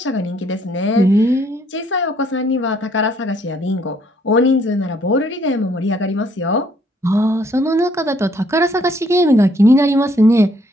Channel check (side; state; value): both; normal; correlation 0.66